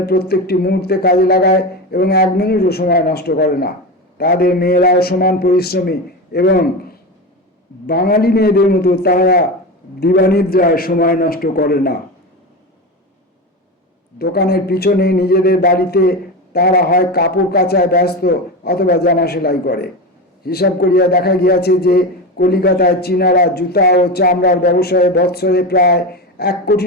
প্রত্যেকটি মুহূর্তে কাজে লাগায় এবং 1 মিনিটও সময় নষ্ট করে না। তাদের মেয়েরাও সমান পরিশ্রমী এবং বাঙালি মেয়েদের মতো তাহারা দিবানিদ্রায় সময় নষ্ট করে না। দোকানের পিছনে নিজেদের বাড়িতে তারা হয় কাপড় কাচায় ব্যস্ত অথবা জামা সেলাই করে। হিসাব করিয়া দেখা গিয়াছে যে কলিকাতায় চীনারা জুতা ও চামড়ার ব্যবসায়ে বৎসরে প্রায় 1 কোটি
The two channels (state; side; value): normal; both; correlation 0.21